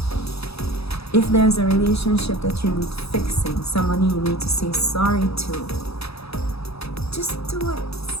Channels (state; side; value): late; right; 0.78 ms